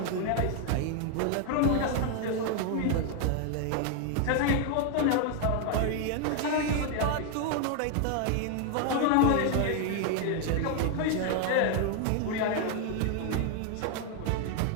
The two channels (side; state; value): both; different; correlation 0.00